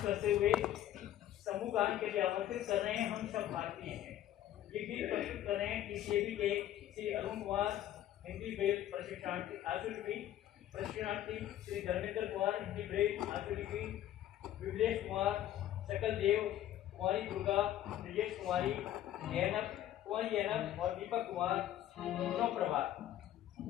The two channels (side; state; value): right; quieter; 12.4 dB